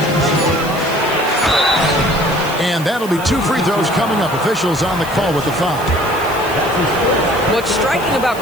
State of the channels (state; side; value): noise; left; hiss, 16 dB below the sound